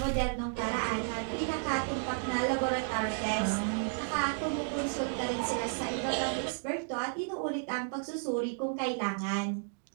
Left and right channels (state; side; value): silent; left; 56 dB below the other